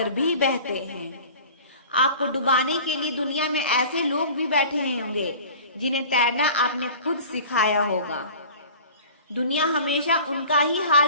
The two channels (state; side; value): inverted; both; correlation -0.42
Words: भी बहते हैं। आपको डुबाने के लिए दुनिया में ऐसे लोग भी बैठे होंगे जिन्हें तैरना आपने खुद सिखाया होगा। दुनिया हमेशा उनका ही